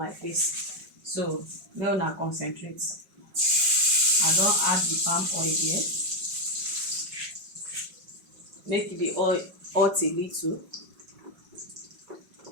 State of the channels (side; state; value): left; late; 5.3 ms